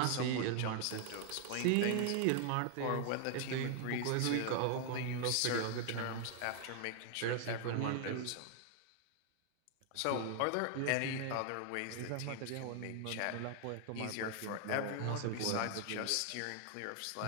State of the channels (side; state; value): both; different; correlation 0.00